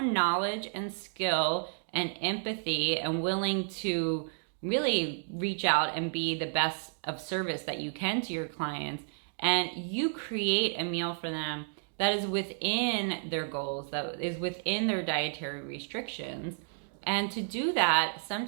knowledge and skill and empathy and willing to really reach out and be the best of service that you can to your clients, and you create a meal for them that is within their goals, that is within their dietary restrictions. And to do that,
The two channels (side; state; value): left; silent; digital silence